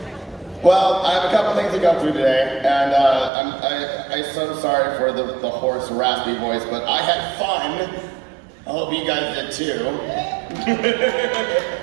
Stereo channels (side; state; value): left; drops out; at 3.3 s